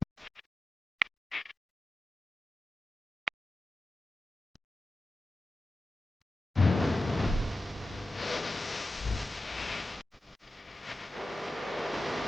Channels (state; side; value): normal; both; correlation 0.93